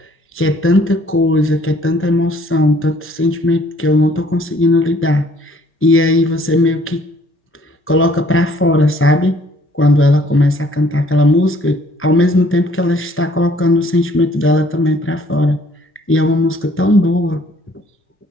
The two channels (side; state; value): both; normal; correlation 0.60